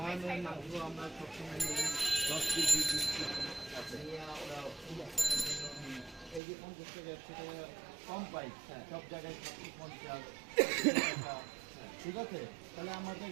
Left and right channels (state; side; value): drops out; left; at 6.4 s